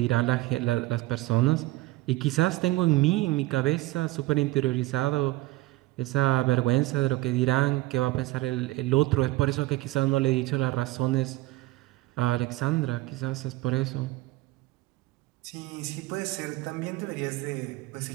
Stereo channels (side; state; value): left; quieter; 19.2 dB